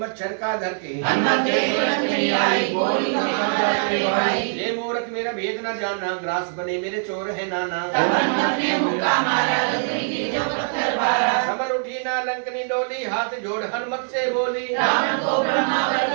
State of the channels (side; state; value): left; silent; digital silence